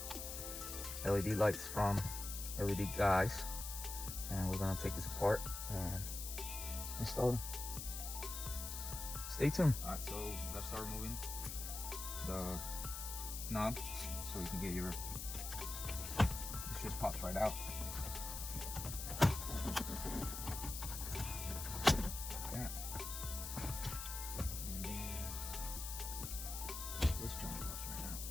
LED lights from LED Guys, and we're gonna take this apart and install them. Stay tuned. All right, so let's start removing the knob so you can get your, this just pops right out. Like that. And then this joint pops right out.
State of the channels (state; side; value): noise; left; hiss, 6 dB below the sound